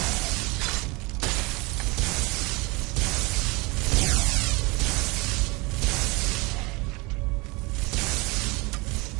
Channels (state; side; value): quieter; left; 26.1 dB